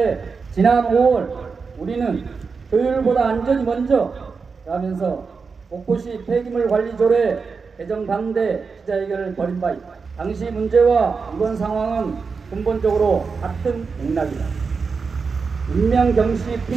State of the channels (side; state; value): left; quieter; 5.0 dB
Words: 지난 5월 우리는 효율보다 안전이 먼저 라면서 목포시 폐기물 관리 조례 개정 반대 기자회견을 벌인 바 있다. 당시 문제와 이번 상황은 근본적으로 같은 맥락이다. 인명경시